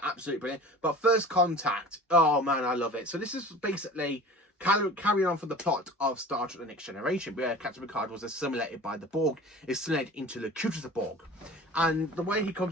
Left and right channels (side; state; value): both; normal; correlation 0.40